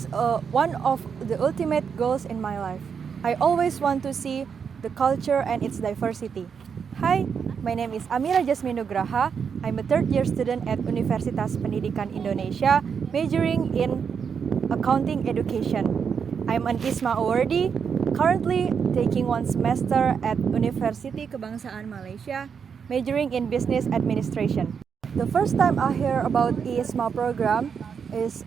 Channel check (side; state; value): left; quieter; 6.6 dB